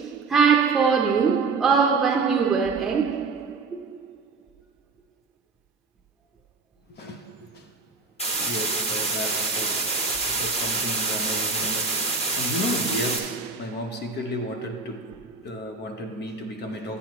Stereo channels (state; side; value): quieter; left; 4.2 dB